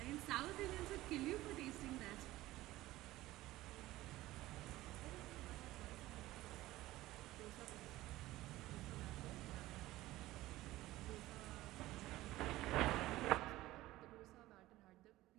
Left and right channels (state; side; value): quieter; left; 16.9 dB